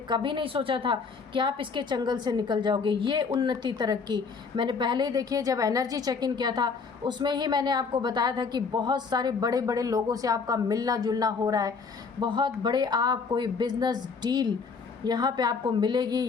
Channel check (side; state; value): right; quieter; 5.1 dB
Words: नहीं सोचा था कि आप इसके चंगल से निकल जाओगे। ये उन्नति तरक्की मैंने पहले ही देखिए, जब एनर्जी चेक इन किया था उसमें ही मैंने आपको बताया था कि बहुत सारे बड़े बड़े लोगों से आपका मिलना जुलना हो रहा है, बहुत बड़े आप कोई बिजनेस डील यहाँ पे आपको मिलेगी,